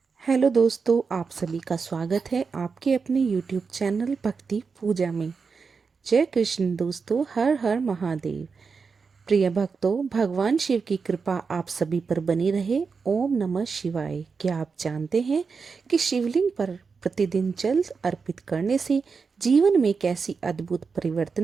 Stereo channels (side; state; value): left; quieter; 5.2 dB